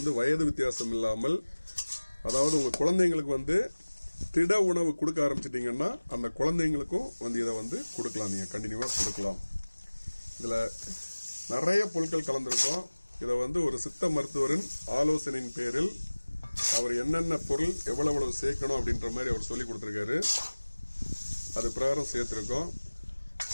வயது வித்தியாசம் இல்லாமல், அதாவது உங்க குழந்தைங்களுக்கு வந்து திட உணவு கொடுக்க ஆரம்பிச்சிட்டீங்கன்னா அந்த குழந்தைங்களுக்கும் வந்து இதை வந்து கொடுக்கலாம். நீங்க கண்டினியூவா கொடுக்கலாம். இதுல நிறைய பொருட்கள் கலந்திருக்கும். இதை வந்து ஒரு சித்த மருத்துவரின் ஆலோசனையின் பேரில் அவர் என்னென்ன பொருள் எவ்வளவு சேர்க்கணும் அப்படின்ற மாதிரி அவர் சொல்லி கொடுத்திருக்காரு. அது பிரகாரம் சேர்த்திருக்கோம்.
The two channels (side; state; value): both; inverted; correlation -1.00